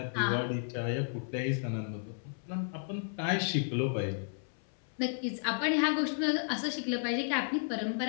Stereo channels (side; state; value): right; silent; 56 dB below the other